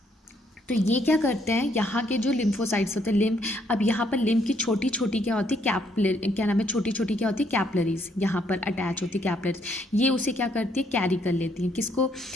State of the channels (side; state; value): both; normal; correlation 0.70